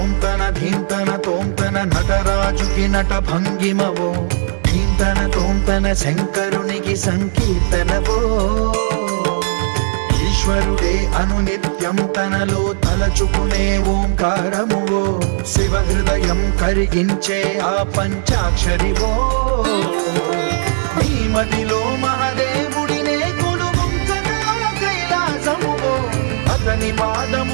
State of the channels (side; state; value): left; silent; digital silence